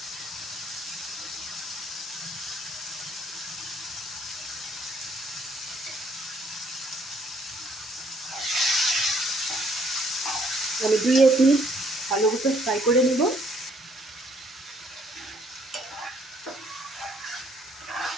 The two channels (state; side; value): normal; both; correlation 0.65